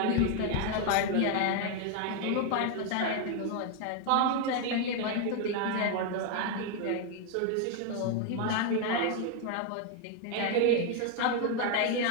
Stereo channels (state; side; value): different; both; correlation 0.00